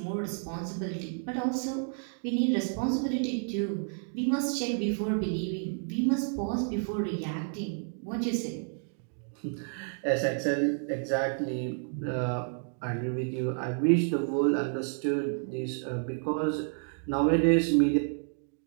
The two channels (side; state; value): left; silent; 57 dB below the other